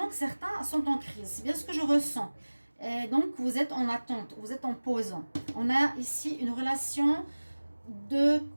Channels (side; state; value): both; inverted; correlation -1.00